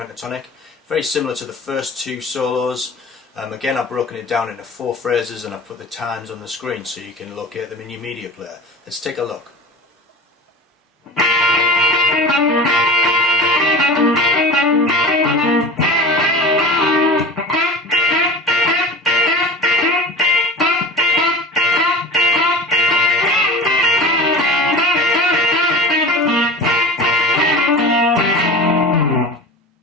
Very similar to the first 2 solos. Again, I've broken it down into 4 phrases and I've put the times on the screen so you can locate them in your media player. Let's take a look.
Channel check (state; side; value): normal; both; correlation 0.34